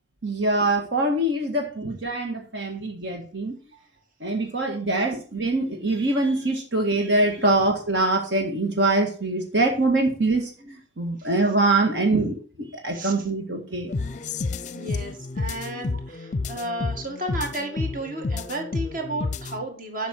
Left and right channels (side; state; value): both; normal; correlation 0.18